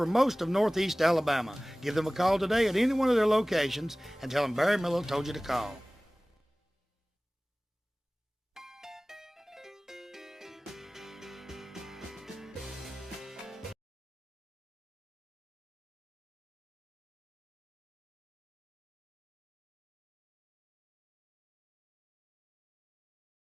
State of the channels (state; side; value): normal; both; correlation 0.98